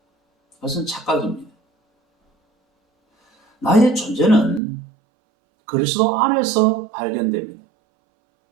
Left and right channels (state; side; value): drops out; left; at 4.6 s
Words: 그것은 착각입니다. 나의 존재는 그리스도 안에서 발견됩니다.